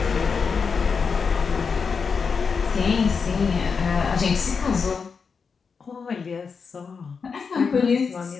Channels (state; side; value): quieter; right; 5.5 dB